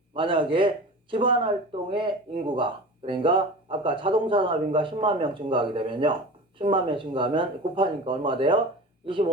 만약에 기반활동의 인구가 그러니까 아까 자동차 산업인가 10만 명 증가하게 되면요 10만 명 증가하면 곱하니까 얼마 돼요?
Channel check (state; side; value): normal; both; correlation 0.34